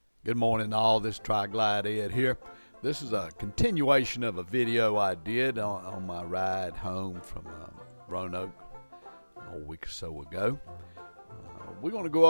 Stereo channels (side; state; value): both; inverted; correlation -1.00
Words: Good morning all, this is Tri-Glide Ed here. This is a continuation of a video I did on my ride home from Roanoke a week or so ago. We're going to go